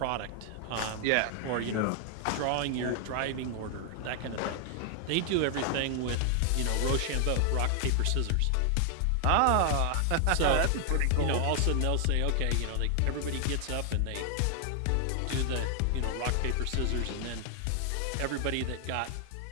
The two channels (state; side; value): different; both; correlation 0.00